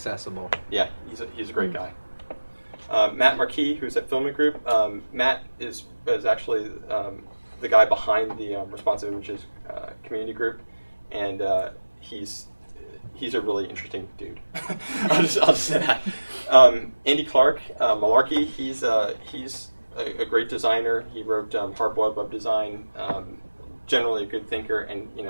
Yeah, he's a great guy. Matt Marquis, who's at Filament Group. Matt is actually the guy behind the Responsive Images community group, and he's a really interesting dude. I'll just say that. Andy Clark, Malarkey, he's a great designer. He wrote Hard-Boiled Web Design. Generally a good thinker, and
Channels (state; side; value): inverted; both; correlation -1.00